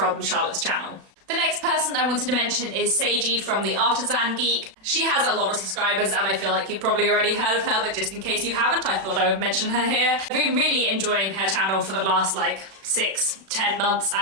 Charlotte's channel. The next person I wanted to mention is Seiji from the Artisan Geek. She has a lot of subscribers and I feel like you've probably already heard of her, but just in case you haven't, I thought I would mention her here. I've been really enjoying her channel for the last like 6-10 months,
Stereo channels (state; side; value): late; left; 36 ms